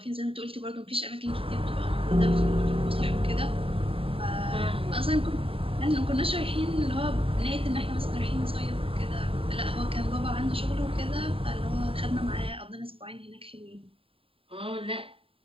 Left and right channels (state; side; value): late; left; 0.27 ms